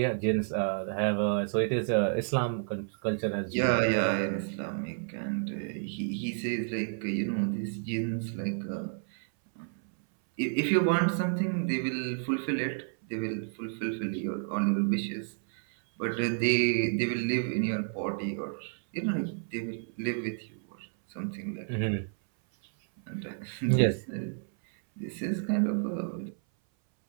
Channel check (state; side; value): silent; left; 57 dB below the other